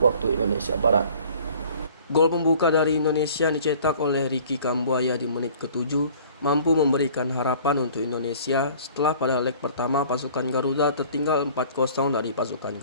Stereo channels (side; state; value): both; inverted; correlation -0.50